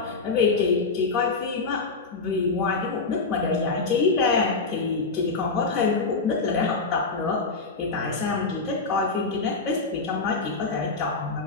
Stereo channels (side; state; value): right; quieter; 4.1 dB